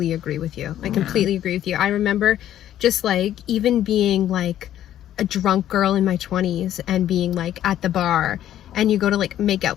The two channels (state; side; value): quieter; right; 11.8 dB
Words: agree with you. I completely agree with you. I remember just like even being like a drunk girl in my 20s and being like at the bar, and you go to like make out